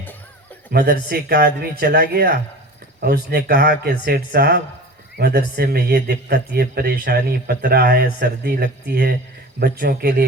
مدرسے کا آدمی چلا گیا اور اس نے کہا کہ سیٹھ صاحب مدرسے میں یہ دقت، یہ پریشانی، پترا ہے، سردی لگتی ہے، بچوں کے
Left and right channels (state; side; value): normal; both; correlation 0.36